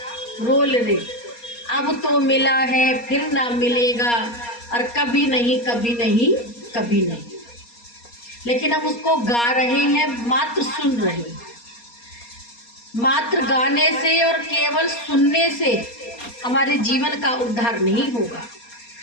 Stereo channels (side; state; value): right; late; 4.2 ms